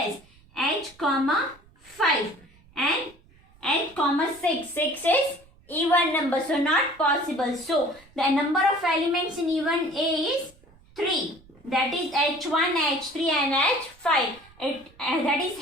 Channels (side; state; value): right; noise; rumble, 28 dB below the sound